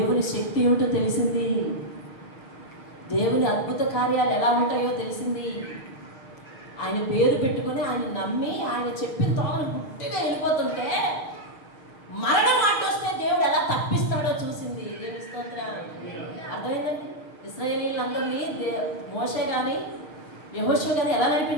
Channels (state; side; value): late; right; 6.5 ms